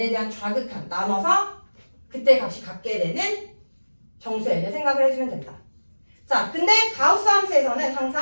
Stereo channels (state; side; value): inverted; both; correlation -1.00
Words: 대한 좌극한 나눠서 그때 값이 같게 되는 정수 n을 생각을 해주면 된다. 자, 근데 가우스 함수에서는